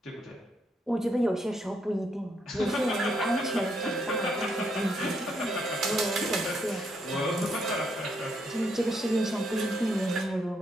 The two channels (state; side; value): normal; both; correlation 0.75